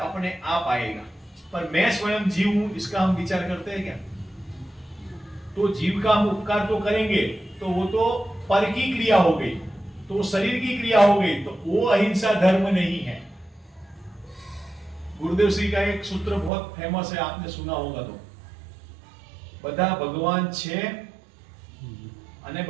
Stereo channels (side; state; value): left; drops out; at 16.5 s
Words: आप आएगा। पर मैं स्वयं जीव हूं, इसका हम विचार करते हैं क्या? तो जीव का हम उपकार तो करेंगे तो वो तो पर की क्रिया हो गई, तो शरीर की क्रिया हो गई, तो वो अहिंसा धर्म नहीं है। गुरुदेव श्री का एक सूत्र बहुत फेमस है, आपने सुना होगा। तो बधा भगवान छे અને